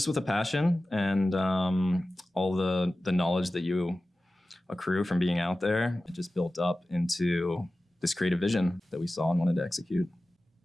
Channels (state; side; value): normal; both; correlation 0.95